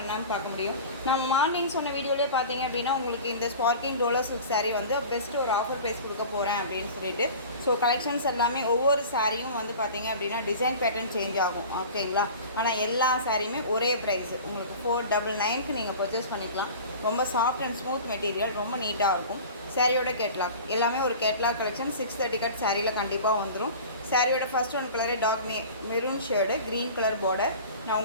பார்க்க முடியும். நம்ம மார்னிங் சொன்ன வீடியோலேயே பார்த்தீங்க அப்படின்னா உங்களுக்கு இந்த ஸ்பார்க்கிங் டோலோ சில்க் சாரீ வந்து பெஸ்ட்டு ஒரு ஆஃபர் ப்ரைஸ் கொடுக்க போகிறேன் அப்படின்னு சொல்லிட்டு. ஸோ கலெக்ஷன்ஸ் எல்லாமே ஒவ்வொரு சாரியும் வந்து பார்த்தீங்க அப்படின்னா டிசைன் பேட்டர்ன் சேஞ்ச் ஆகும், ஓகேங்களா. ஆனால் எல்லா சாரியுமே ஒரே ப்ரைஸ் உங்களுக்கு 499க்கு நீங்கள் பர்ச்சேஸ் பண்ணிக்கலாம். ரொம்ப சாஃப்ட் அண்ட் ஸ்மூத் மெட்டீரியல், ரொம்ப நீட்டாக இருக்கும். சாரியோட கேட்லாக் எல்லாமே ஒரு கேட்லாக் கலெக்ஷன் 630 கட் சாரியில் கண்டிப்பாக வந்துடும். சாரியோட first one colour dark maroon shade, green colour border. நான்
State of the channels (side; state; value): both; inverted; correlation -0.38